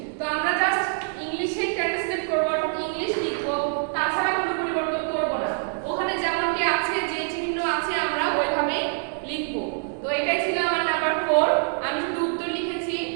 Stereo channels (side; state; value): left; silent; 58 dB below the other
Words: তো আমরা জাস্ট ইংলিশে ট্রান্সলেট করব, ইংলিশ লিখব, তাছাড়া কোনো পরিবর্তন করব না। ওখানে যেমনটি আছে, যে চিহ্ন আছে আমরা ওইভাবেই লিখব। তো এটাই ছিল